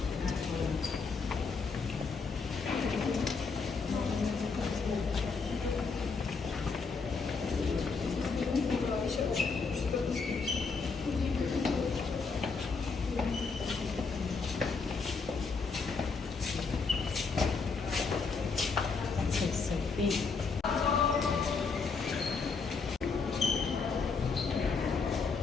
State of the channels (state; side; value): quieter; right; 4.8 dB